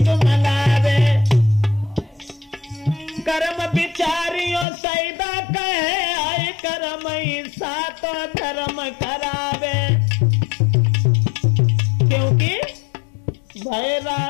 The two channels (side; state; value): right; drops out; at 4.7 s